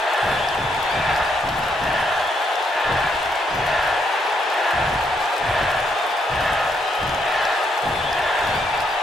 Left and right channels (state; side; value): normal; both; correlation 0.75